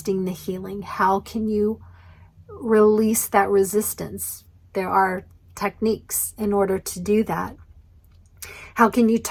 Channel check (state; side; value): identical; both; correlation 1.00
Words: the healing. How can you release that resistance? There are techniques in order to do that. How can you